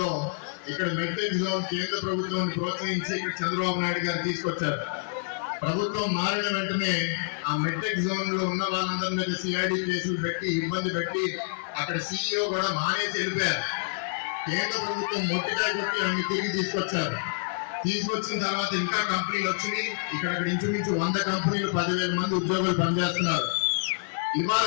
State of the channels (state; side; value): silent; right; digital silence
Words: ఇక్కడ మెట్రిక్ జోన్ కేంద్ర ప్రభుత్వాన్ని ప్రోత్సహించి ఇక్కడ చంద్రబాబు నాయుడు గారు తీసుకొచ్చారు. ప్రభుత్వం మారిన వెంటనే ఆ మెట్రిక్ జోన్ లో ఉన్న వాళ్ళందరి మీద సిఐడి కేసులు పెట్టి ఇబ్బంది పెట్టి అక్కడ CEO కూడా మానేసి వెళ్ళిపోయారు. కేంద్ర ప్రభుత్వం మొట్టికాయ కొట్టి అన్ని తిరిగి తీసుకొచ్చారు. తీసుకొచ్చిన తర్వాత ఇంకా కంపెనీలు వచ్చినాయి. ఇక్కడ ఇంచుమించు 100 కంపెనీలు 10,000 మంది ఉద్యోగులు పనిచేస్తున్నారు. ఇవాళ